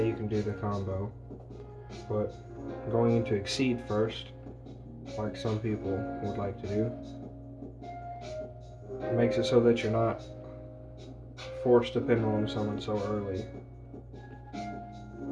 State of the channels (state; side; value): identical; both; correlation 1.00